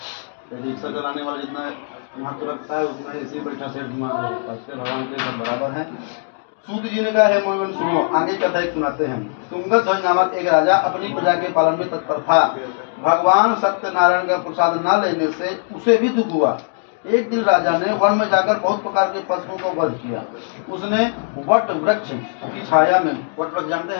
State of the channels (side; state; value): right; silent; 66 dB below the other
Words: यदि रिक्शा चलाने वाला जितना महत्व रखता है उतना ऐसे बैठा सेठ भगवान के लिए सब बराबर है। सूत जी ने कहा है मोहन सुनो, आगे कथा एक सुनाते हैं। तुंगत ध्वज नामक एक राजा अपनी प्रजा के पालन में तत्पर था। भगवान सत्यनारायण का प्रसाद न लेने से उसे भी दुख हुआ। एक दिन राजा ने वन में जाकर बहुत प्रकार के पशुओं का वध किया। उसने वट वृक्ष की छाया में, वट वृक्ष जानते